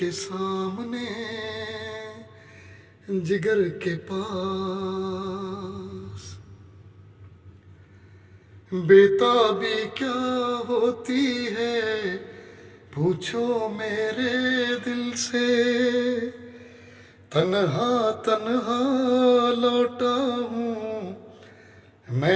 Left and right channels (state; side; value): identical; both; correlation 1.00